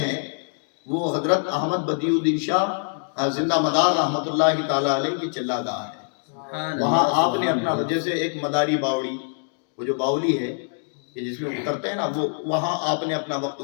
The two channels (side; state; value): right; silent; 57 dB below the other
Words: وہ حضرت احمد بدیع الدین شاہ زندہ مدار رحمت اللہ تعالیٰ علیہ کی چلہ گاہ ہے. وہاں آپ نے اپنا، جیسے ایک مداری باوڑی، وہ جو باولی ہے کہ جس میں اترتے ہیں نا، وہ وہاں آپ نے اپنا وقت